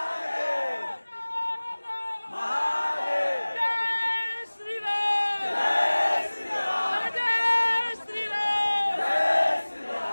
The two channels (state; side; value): inverted; both; correlation -1.00